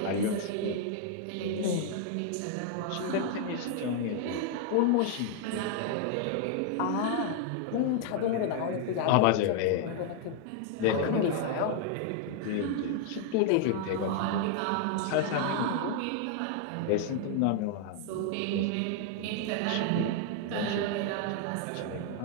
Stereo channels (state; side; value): different; both; correlation 0.00